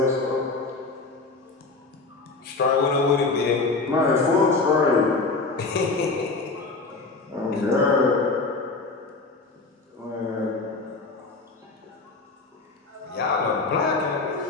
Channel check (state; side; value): quieter; right; 3.7 dB